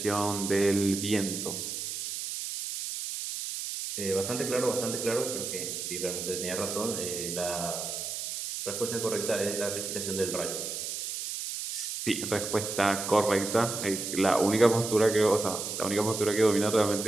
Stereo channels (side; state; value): right; noise; hiss, 5 dB below the sound